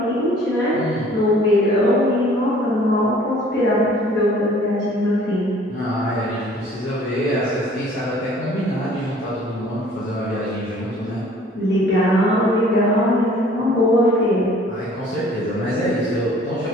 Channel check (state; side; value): normal; both; correlation 0.54